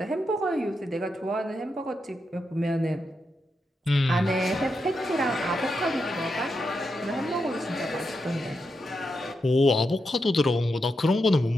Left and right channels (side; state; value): both; normal; correlation 0.85